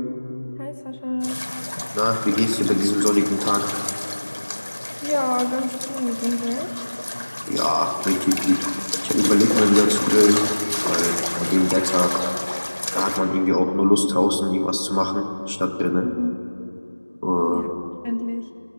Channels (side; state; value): both; inverted; correlation -1.00